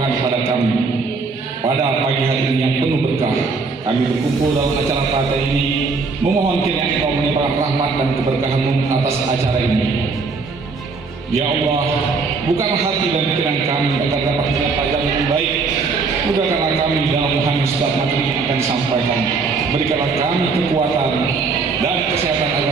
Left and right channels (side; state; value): left; quieter; 4.4 dB